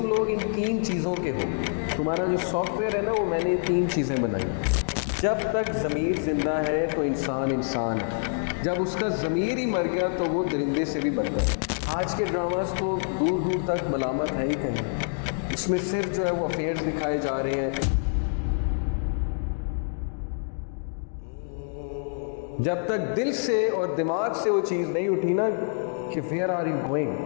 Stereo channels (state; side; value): silent; right; digital silence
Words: लोग इन 3 चीज़ों के हो। तुम्हारा जो सॉफ्टवेयर है ना, वो मैंने 3 चीज़ें बनाई। जब तक ज़मीर ज़िंदा है तो इंसान इंसान है, जब उसका ज़मीर ही मर गया तो वो दरिंदे से भी बढ़ गया। आज के ड्रामास तो दूर दूर तक मलामत है ही कहीं, इसमें सिर्फ जो है वो अफेयर्स दिखाए जा रहे हैं। जब तक दिल से और दिमाग से वो चीज़ नहीं उठी ना कि वेयर आर यू